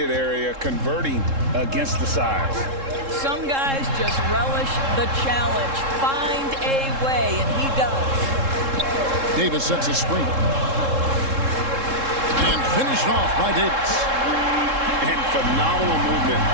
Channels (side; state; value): left; late; 3.7 ms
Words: area, converting against the size. Some guys just relish the challenge. Find a way, and he does. Davis sets a screen. And finished off by Davis. And phenomenal movement